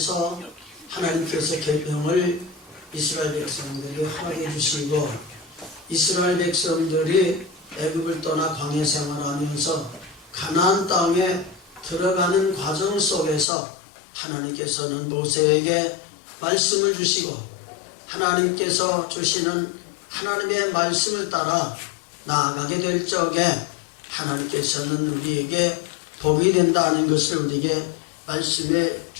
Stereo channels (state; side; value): drops out; right; at 13.5 s